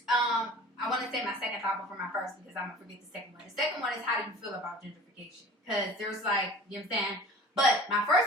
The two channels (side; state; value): both; normal; correlation 0.43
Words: I want to say my second thought before my first because I'm gonna forget the second one. The second one is how do you feel about gentrification? Because there's like, you know what I'm saying? But my